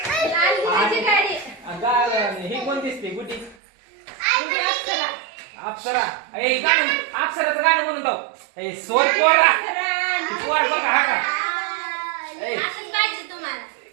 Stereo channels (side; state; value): left; drops out; at 3.6 s